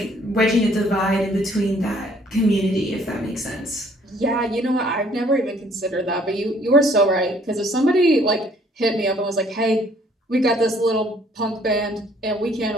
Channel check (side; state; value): both; normal; correlation 0.61